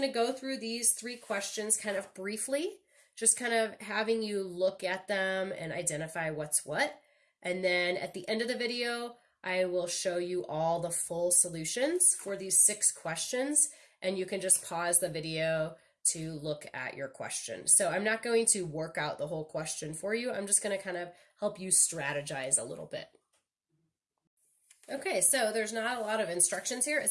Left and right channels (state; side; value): identical; both; correlation 1.00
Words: to go through these three questions kind of briefly, just kind of having you look at them and identify what's what. And then at the end of the video, I will show you all the full solutions for these 6 questions, and you can just pause the video to look at your question. So I'm not going to work out the whole question for you. I'm just going to kind of help you strategize a little bit. Okay, so there's not a lot of instructions here. It